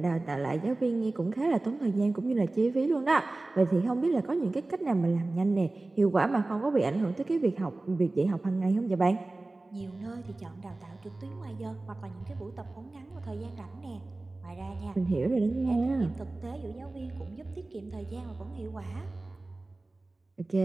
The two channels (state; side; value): quieter; left; 3.0 dB